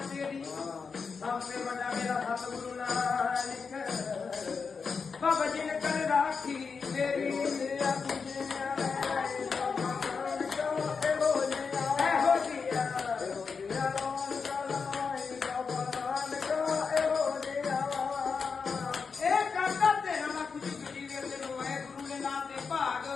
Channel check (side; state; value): right; quieter; 5.3 dB